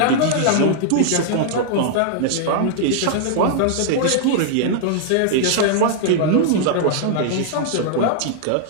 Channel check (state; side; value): different; both; correlation -0.01